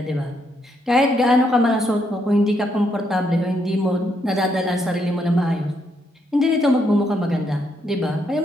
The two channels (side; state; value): both; normal; correlation 0.76